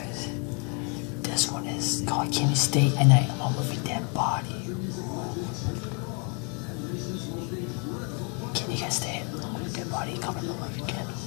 This one is called Can You Stay at Night Alone with a Dead Body? Can you guys stay alone with a dead body? Comment below if you can.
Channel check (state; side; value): quieter; right; 36.5 dB